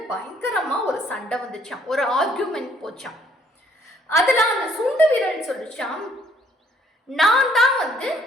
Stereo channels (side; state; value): both; normal; correlation 0.65